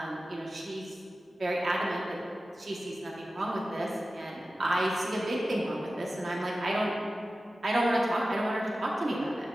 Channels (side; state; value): both; normal; correlation 0.95